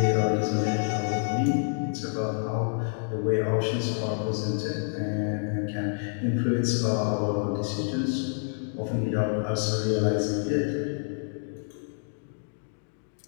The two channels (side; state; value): right; silent; digital silence